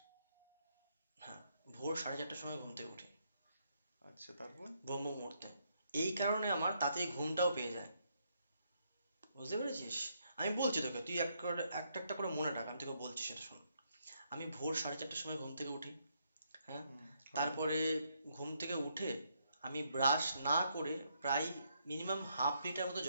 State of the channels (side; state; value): both; inverted; correlation -0.75